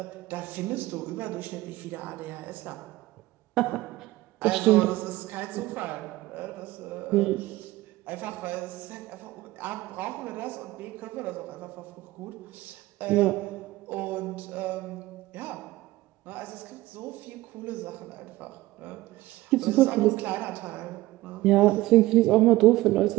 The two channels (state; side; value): quieter; left; 17.9 dB